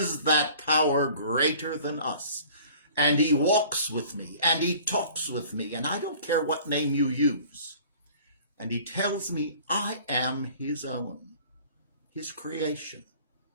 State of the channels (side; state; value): both; inverted; correlation -0.49